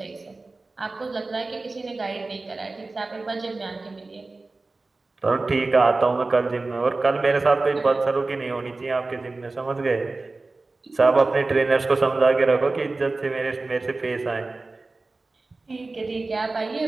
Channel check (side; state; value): left; quieter; 3.4 dB